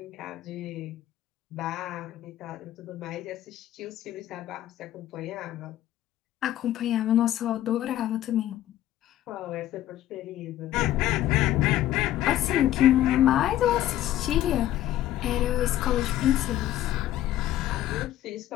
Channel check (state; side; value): quieter; right; 13.2 dB